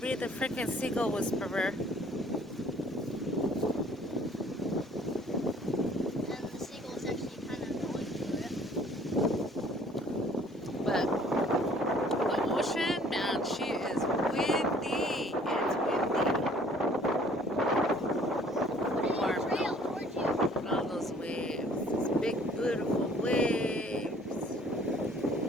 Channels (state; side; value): normal; both; correlation 0.56